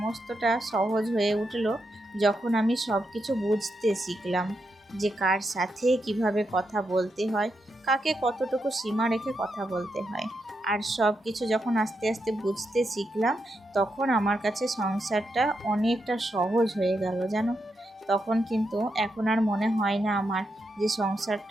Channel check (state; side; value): normal; both; correlation 0.84